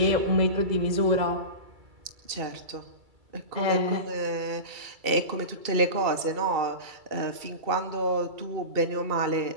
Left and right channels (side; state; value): left; late; 2.3 ms